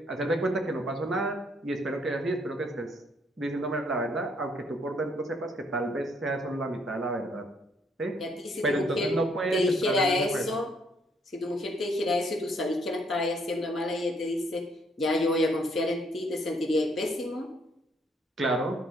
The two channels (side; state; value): both; normal; correlation 0.68